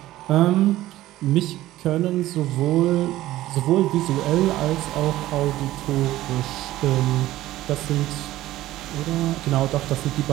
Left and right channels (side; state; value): left; quieter; 15.4 dB